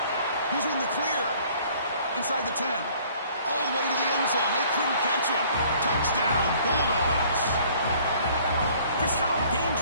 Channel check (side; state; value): both; inverted; correlation -0.56